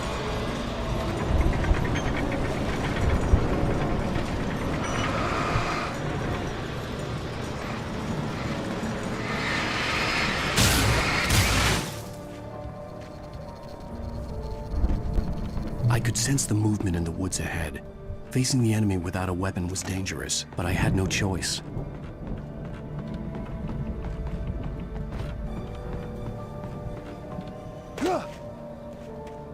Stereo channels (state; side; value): identical; both; correlation 1.00